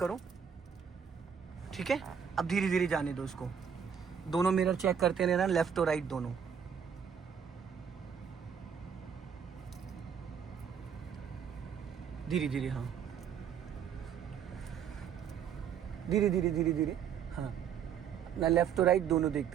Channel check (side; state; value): left; quieter; 7.7 dB